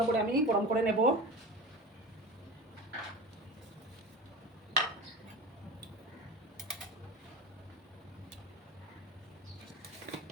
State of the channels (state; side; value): normal; both; correlation 0.30